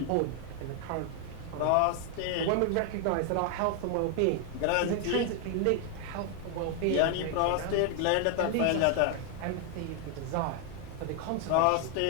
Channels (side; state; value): both; different; correlation 0.00